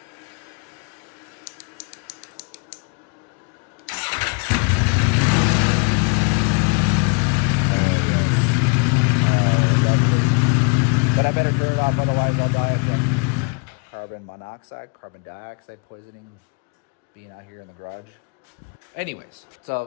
But I better turn it off, otherwise I'll die. Carbon monoxide, carbon dioxide poisoning, being out here in the garage. Anyways,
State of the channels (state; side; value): quieter; right; 36.2 dB